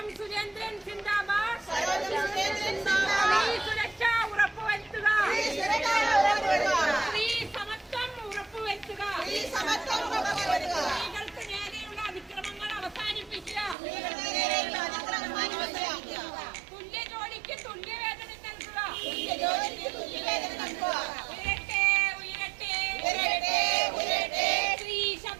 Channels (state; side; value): drops out; left; at 13.8 s